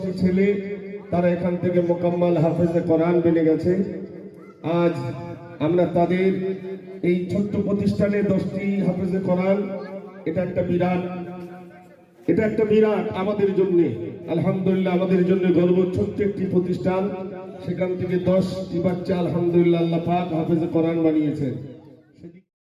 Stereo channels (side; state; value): both; identical; correlation 1.00